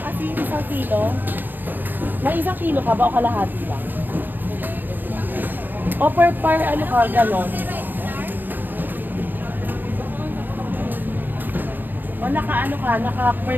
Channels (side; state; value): left; late; 0.091 ms